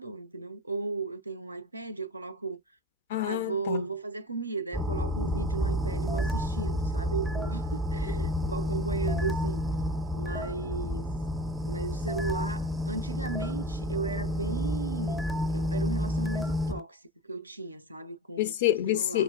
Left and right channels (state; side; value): normal; both; correlation 0.32